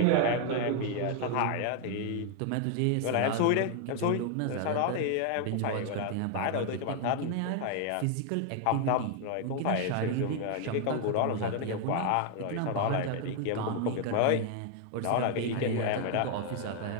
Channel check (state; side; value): different; both; correlation 0.00